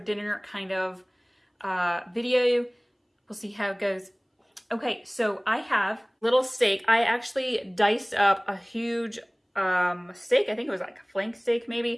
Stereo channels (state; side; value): identical; both; correlation 1.00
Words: kind of video. We'll see how it goes. Okay, so I have little steak. I actually diced up a huge steak. I think it was like a flank steak